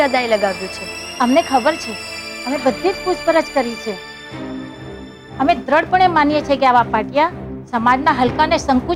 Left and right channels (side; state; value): both; identical; correlation 1.00